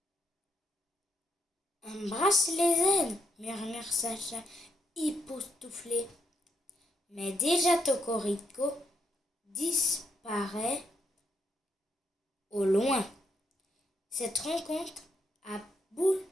Embrasse les aides, murmure Sacha, époustouflé. Mais déjà Cocorico disparaît au loin. Cette rencontre a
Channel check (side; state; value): both; normal; correlation 0.77